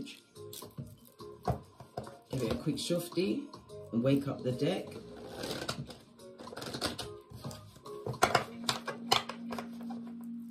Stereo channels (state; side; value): identical; both; correlation 1.00